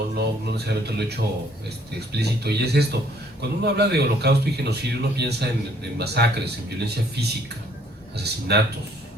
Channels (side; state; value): both; normal; correlation 0.62